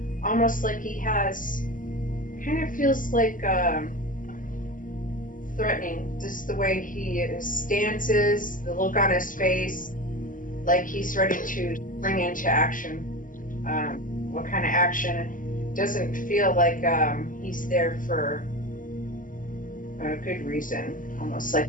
Almost like he has, kind of feels like threatening, just the way his stance is, the look on his face, like he's ready to spring into action. What kind of action? Doesn't feel like he's there for a good reason. Almost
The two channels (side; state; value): right; late; 0.39 ms